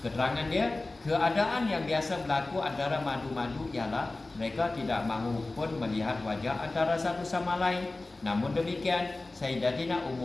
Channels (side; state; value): right; quieter; 3.1 dB